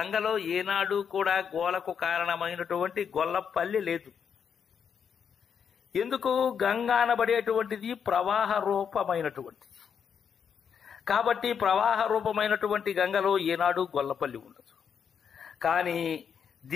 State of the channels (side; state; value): right; quieter; 7.3 dB